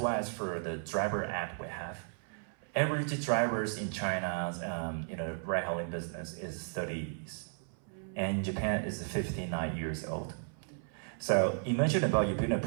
as for the driver app we have, average drivers in China's ride-hailing business is 30s, and Japan is 59 years old. So imagine about you building a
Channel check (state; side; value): silent; left; 55 dB below the other